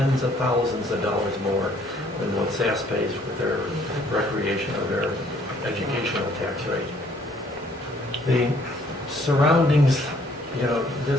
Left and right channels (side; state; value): both; normal; correlation 0.62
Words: of thousands of dollars more than what SASS pays with their recreation or their educational tax rate. The surroundings,